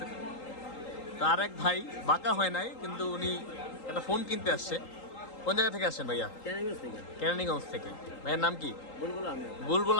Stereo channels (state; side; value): late; right; 3.8 ms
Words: তো আর এক ভাই বাঁকা হয় নাই, কিন্তু উনি একটা ফোন কিনতে আসছে। কোন জায়গা থেকে আসছেন ভাইয়া? কেরানীগঞ্জ থেকে। ভাইয়ের নাম কি? বুলবুল